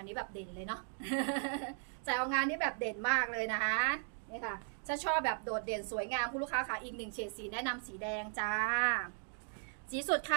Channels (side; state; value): left; silent; 53 dB below the other